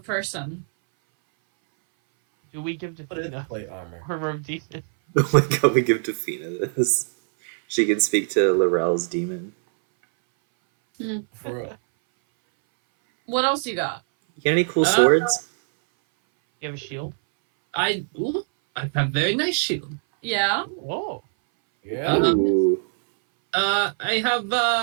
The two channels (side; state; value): left; silent; 60 dB below the other